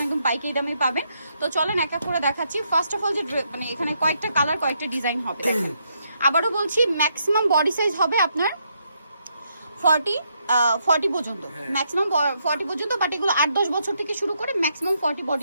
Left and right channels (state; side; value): inverted; both; correlation -0.77